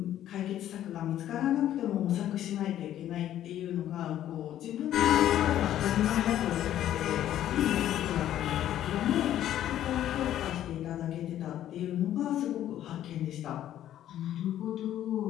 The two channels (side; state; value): right; quieter; 11.9 dB